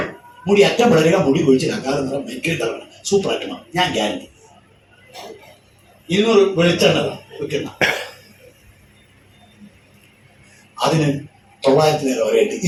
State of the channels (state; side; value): identical; both; correlation 1.00